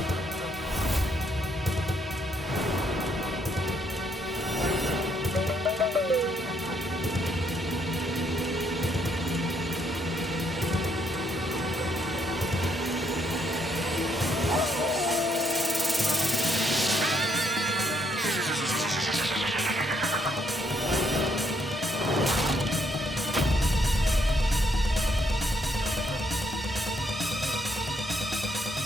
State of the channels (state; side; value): normal; both; correlation 0.72